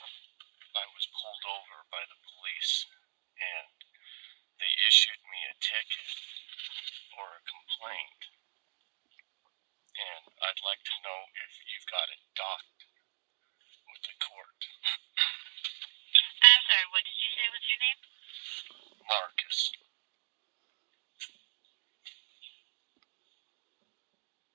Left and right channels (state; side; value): silent; left; digital silence